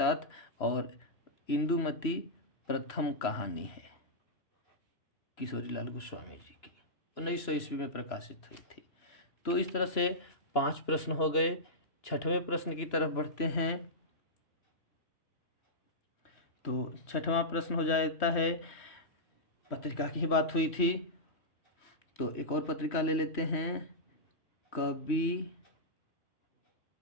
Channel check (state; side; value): late; right; 3.1 ms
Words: और इंदुमती प्रथम कहानी है किशोरीलाल गोस्वामी जी की, 1900 ईस्वी में प्रकाशित हुई थी। तो इस तरह से 5 प्रश्न हो गए। 6वें प्रश्न की तरफ बढ़ते हैं। तो 6वां प्रश्न हो जाता है, पत्रिका की ही बात हुई थी तो एक और पत्रिका ले लेते हैं, कवि